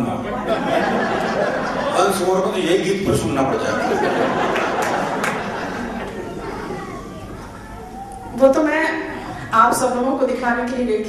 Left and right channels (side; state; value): both; identical; correlation 1.00